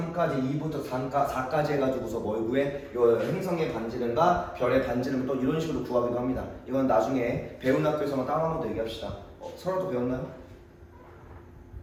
2부터 4까지 해가지고서 뭘 구해? 요 행성의 반지름과 별의 반지름을 또 이런 식으로 구하기도 합니다. 이건 나중에 배운 학교에서만 따로 한번 더 얘기합시다. 서로도 배웠나요?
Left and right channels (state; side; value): identical; both; correlation 1.00